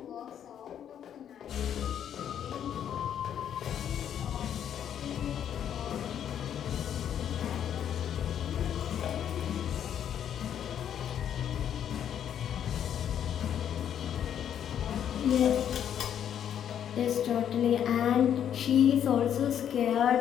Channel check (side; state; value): right; quieter; 9.4 dB